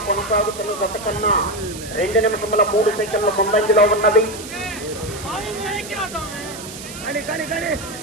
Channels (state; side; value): noise; right; hiss, 12 dB below the sound